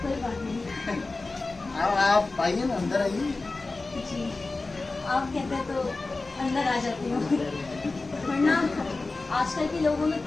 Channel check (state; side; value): quieter; right; 3.5 dB